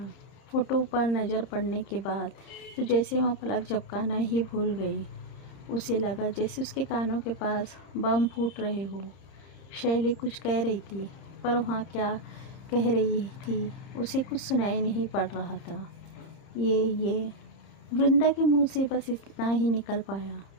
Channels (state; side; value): late; right; 30 ms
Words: फ़ोटो पर नज़र पड़ने के बाद तो जैसे वह पलक झपकाना ही भूल गई। उसे लगा जैसे उसके कानों के पास बम फूट रहे हो। शैली कुछ कह रही थी, पर वहाँ क्या कह रही थी उसे कुछ सुनाई नहीं पड़ रहा था। ये वृंदा के मुंह से बस इतना ही निकल पाया।